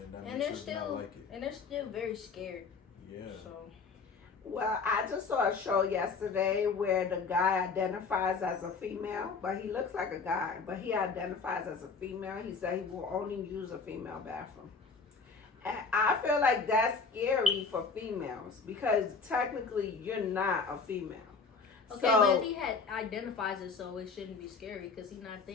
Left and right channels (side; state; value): right; quieter; 4.8 dB